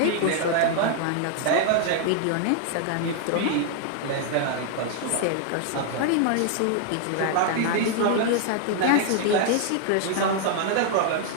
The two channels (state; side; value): different; both; correlation 0.00